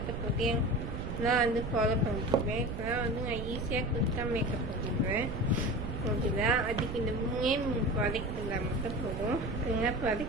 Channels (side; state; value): right; noise; rumble, 5 dB below the sound